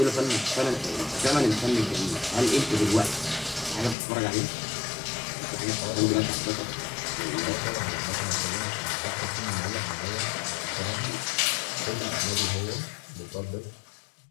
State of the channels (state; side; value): drops out; right; at 4.0 s